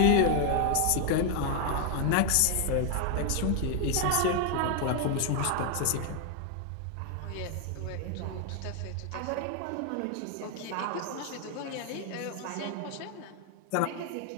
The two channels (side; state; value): both; different; correlation 0.00